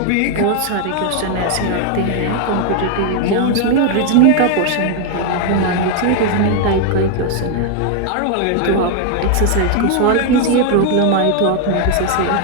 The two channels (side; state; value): both; different; correlation 0.00